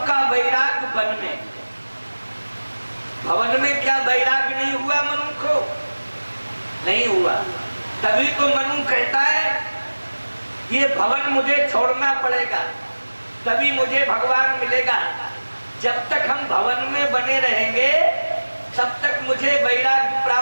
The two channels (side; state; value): both; inverted; correlation -1.00